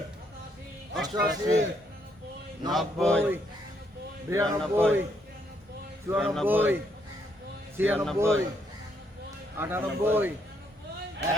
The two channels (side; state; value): both; normal; correlation 0.73